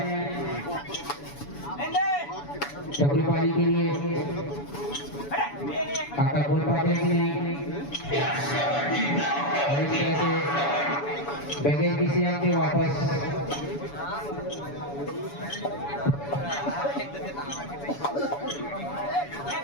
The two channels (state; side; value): late; right; 7.0 ms